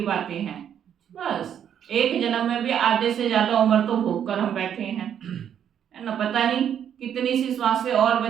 बातें हैं? बस एक जन्म में भी आधे से ज्यादा उम्र तो भोग कर हम बैठे हैं, है ना। पता नहीं कितनी सी श्वासें और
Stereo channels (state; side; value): quieter; left; 9.1 dB